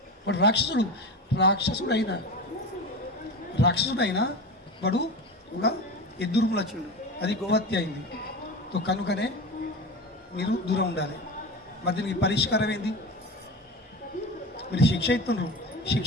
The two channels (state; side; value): normal; both; correlation 0.28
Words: వాడు రాక్షసుడు అయినా వాడు ఒక ఎద్దు రూపంలో వచ్చిండు, అది గోహత్య అయింది. కనుకనే మీరు దూరం ఉండాలి. మరి దీనికి పరిష్కారం ఏంది? మీరు శిక్ష ఇస్తున్నారు,